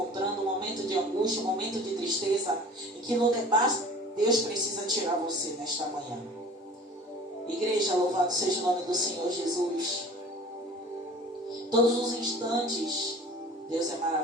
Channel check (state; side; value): normal; both; correlation 0.43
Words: um momento de angústia, um momento de tristeza, em que Lodebar Deus precisa tirar você nesta manhã. Igreja, louvado seja o nome do Senhor Jesus. Todos os instantes, Deus é